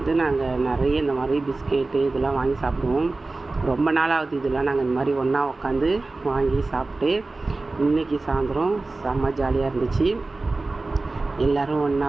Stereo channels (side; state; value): left; quieter; 3.3 dB